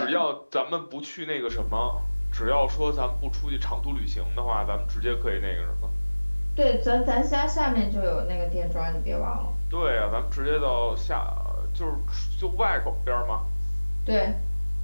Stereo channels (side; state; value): both; inverted; correlation -1.00